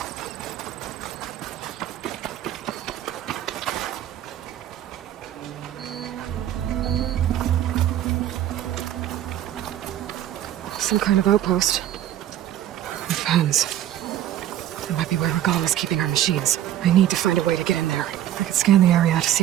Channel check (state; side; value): quieter; left; 11.9 dB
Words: Some kind of outpost. With pens. That might be where Regala is keeping our machines. I need to find a way to get in there. I can scan the area to